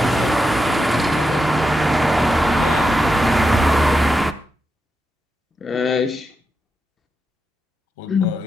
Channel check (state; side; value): normal; both; correlation 0.87